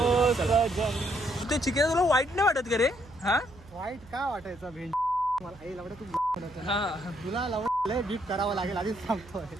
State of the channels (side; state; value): right; noise; hum, 22 dB below the sound